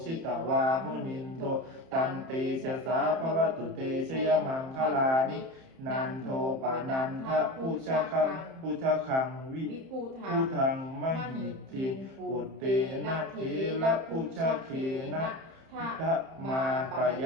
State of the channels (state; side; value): late; left; 30 ms